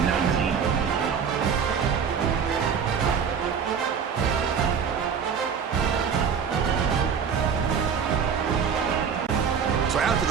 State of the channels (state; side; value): quieter; left; 6.8 dB